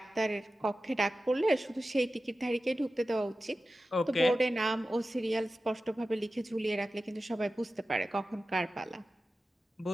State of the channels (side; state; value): both; normal; correlation 0.94